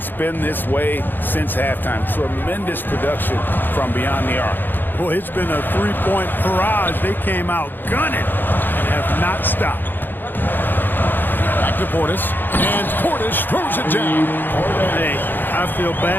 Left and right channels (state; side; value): late; right; 0.093 ms